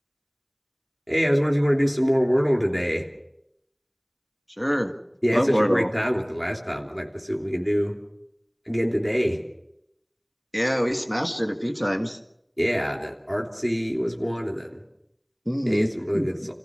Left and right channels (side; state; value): both; identical; correlation 1.00